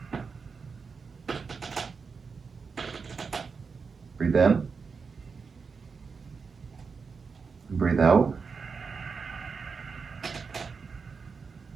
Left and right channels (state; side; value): quieter; left; 5.2 dB